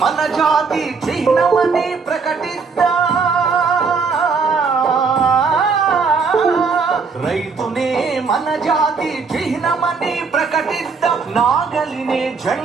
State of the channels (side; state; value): left; quieter; 5.0 dB